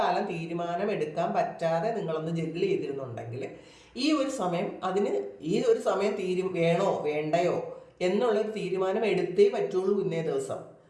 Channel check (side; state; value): both; identical; correlation 1.00